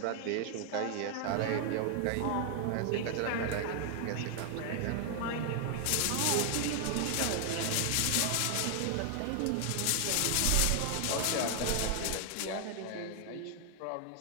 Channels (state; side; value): different; both; correlation 0.00